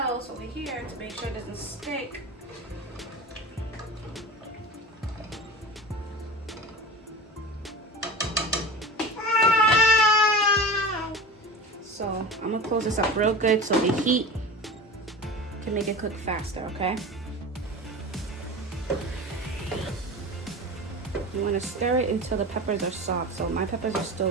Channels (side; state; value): both; normal; correlation 0.32